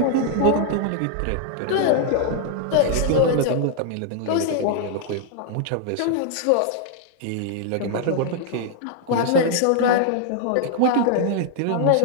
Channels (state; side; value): different; both; correlation -0.01